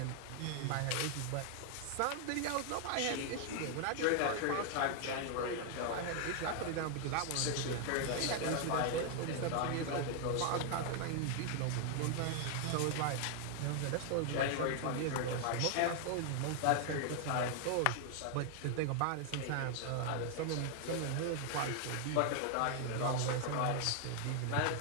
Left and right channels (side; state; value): both; different; correlation 0.00